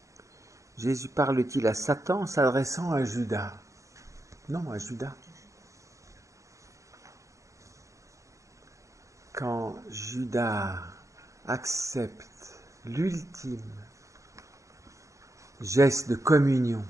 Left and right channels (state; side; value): late; left; 0.15 ms